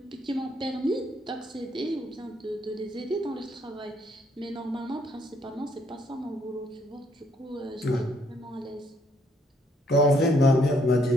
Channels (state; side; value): normal; both; correlation 0.69